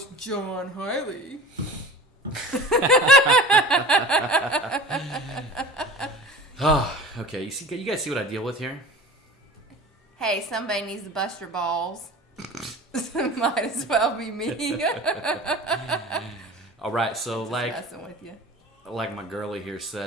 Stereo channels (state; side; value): normal; both; correlation 0.38